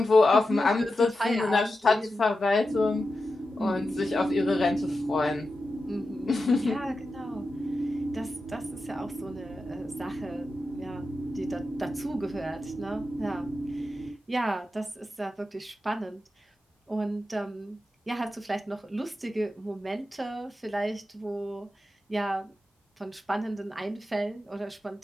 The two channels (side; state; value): both; normal; correlation 0.91